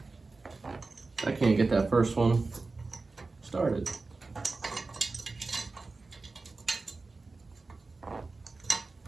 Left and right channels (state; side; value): quieter; left; 3.7 dB